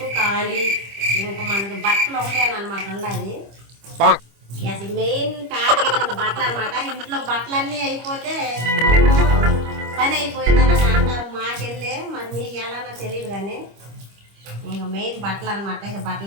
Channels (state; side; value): late; left; 25 ms